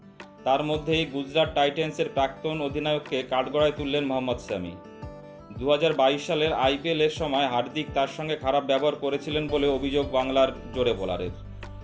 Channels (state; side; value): identical; both; correlation 1.00